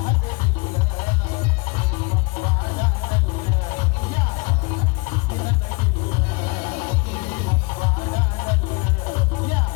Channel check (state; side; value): quieter; right; 27.6 dB